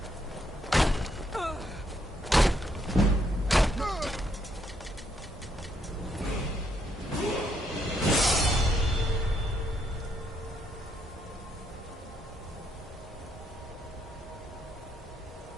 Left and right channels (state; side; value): normal; both; correlation 0.74